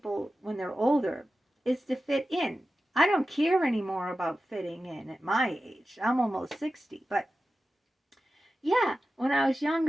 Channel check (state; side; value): normal; both; correlation 0.93